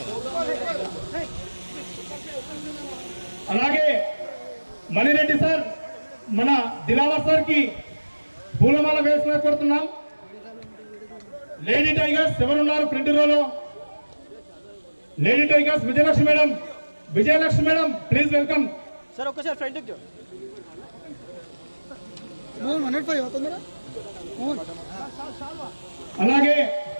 అలాగే మణిరెడ్డి సార్ మన దిలావర్ సార్ కి పూలమాల వేసిన కోరుతున్నాం. లేడీ టైగర్స్ ఎవరున్నారు front row? Lady tigers Vijayalakshmi madam, Vijayalakshmi madam please welcome sir. ఒక్కసారి ఫ్రంట్ అలాగే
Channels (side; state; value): both; inverted; correlation -1.00